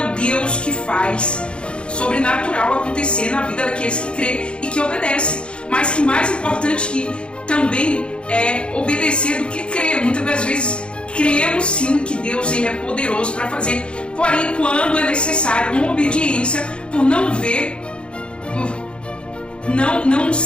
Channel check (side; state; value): right; late; 0.056 ms